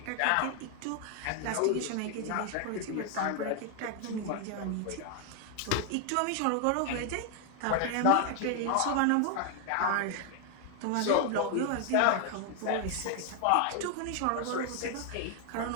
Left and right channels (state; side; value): different; both; correlation 0.00